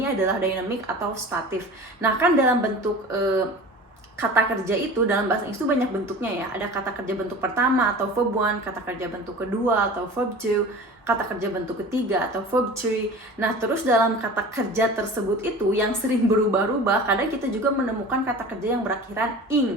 adalah dynamic atau statif. Nah, kan dalam bentuk kata kerja itu dalam bahasa Inggris itu banyak bentuknya ya. Ada kata kerja bentuk pertama atau verb one, kata kerja bentuk kedua atau verb two, kata kerja bentuk ketiga atau verb three. Nah, terus dalam kata kerja tersebut itu yang sering berubah-ubah, kadang kita juga menemukan kata kerja yang berakhiran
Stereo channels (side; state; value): both; normal; correlation 0.38